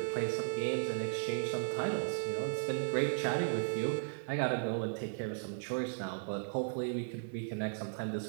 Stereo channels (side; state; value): left; silent; 54 dB below the other